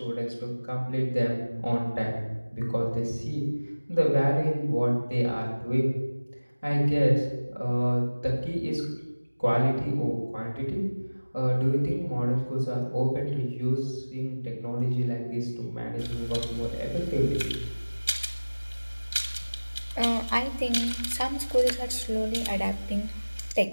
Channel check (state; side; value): inverted; both; correlation -1.00